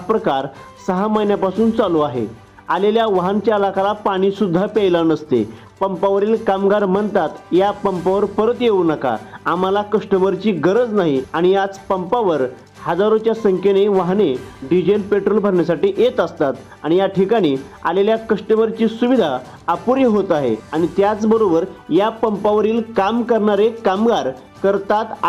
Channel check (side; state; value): both; identical; correlation 1.00